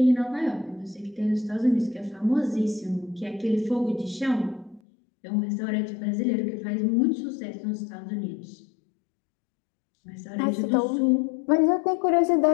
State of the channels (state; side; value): drops out; right; at 4.8 s